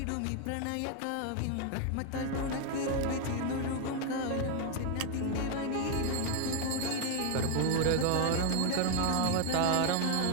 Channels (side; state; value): both; different; correlation 0.01